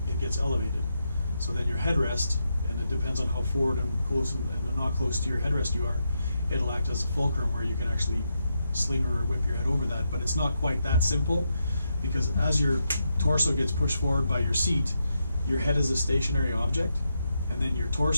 it gets elevated. So then your headrest, and it depends on how forward and close and not close to your headrest you are, it'll act as a fulcrum where you can actually sling or whip your head over that. But it's not quite that simple, because as your torso gets pushed forward by your seat, your head is a stationary object, and then your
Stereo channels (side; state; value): both; inverted; correlation -0.84